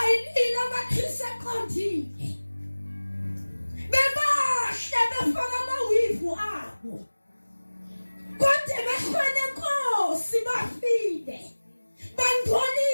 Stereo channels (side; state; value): both; inverted; correlation -1.00